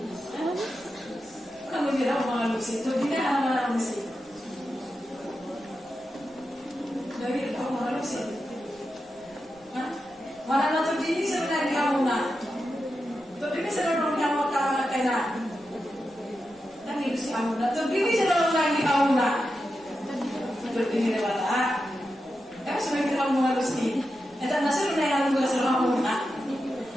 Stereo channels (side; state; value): right; noise; rumble, 30 dB below the sound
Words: Bukan begitu orang misi, dunia anak-anak misi. Jadi orang misi. Mana nanti ini sebenarnya di kamu nak? Tuh ini sebenarnya kamu kamu kena. Dan ini si kamu nak. Tuh ini sebenarnya di kamu nak. Tuh ini lewat ah. Tapi sebenarnya kamu harus di. Eta nasi lu yang juga selama nak.